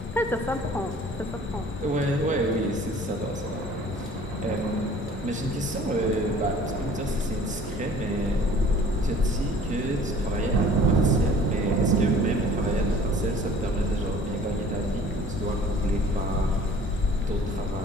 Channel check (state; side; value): normal; both; correlation 0.50